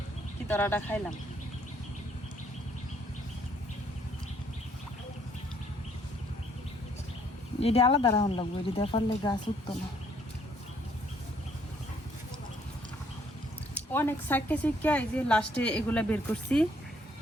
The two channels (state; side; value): normal; both; correlation 0.66